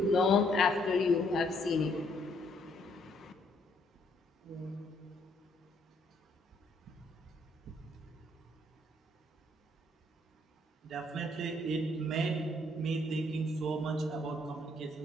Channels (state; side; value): normal; both; correlation 0.68